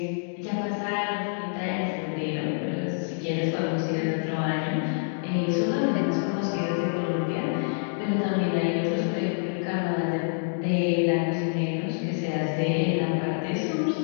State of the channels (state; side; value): silent; right; digital silence